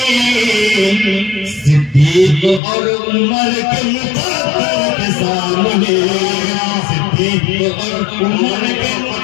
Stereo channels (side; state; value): right; drops out; at 2.6 s